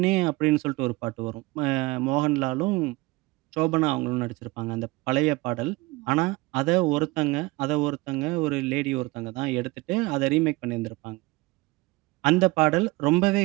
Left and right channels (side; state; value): left; quieter; 22.6 dB